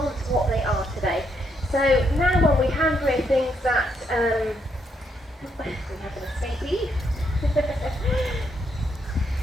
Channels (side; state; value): both; normal; correlation 0.76